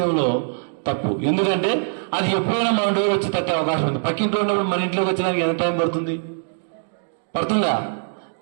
తప్పు. ఎందుకంటే అది ఎప్పుడైనా మన డోర్ వచ్చి తట్టే అవకాశం ఉంది. పక్కింట్లో ఉన్నప్పుడు మన ఇంట్లోకి వచ్చేదానికి ఎంత టైం పడుతుంది? పడుతుందా?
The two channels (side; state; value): left; silent; digital silence